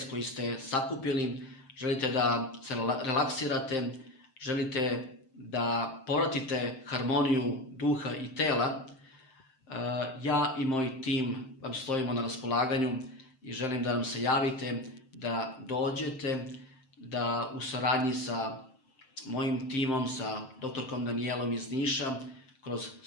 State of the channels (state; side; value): late; right; 7.6 ms